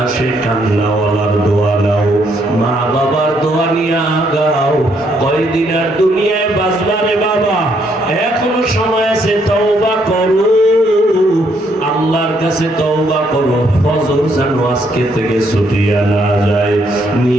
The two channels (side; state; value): both; normal; correlation 0.72